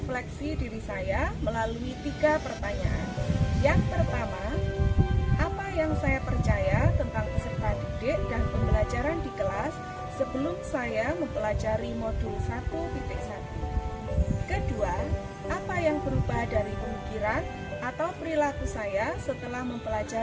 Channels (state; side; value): identical; both; correlation 1.00